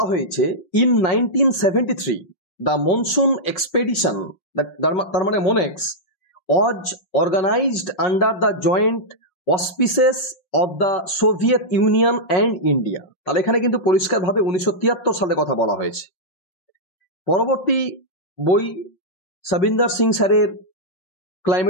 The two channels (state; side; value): late; right; 5.6 ms